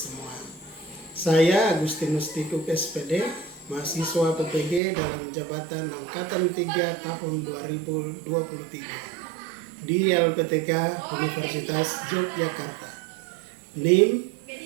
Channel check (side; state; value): left; drops out; at 4.8 s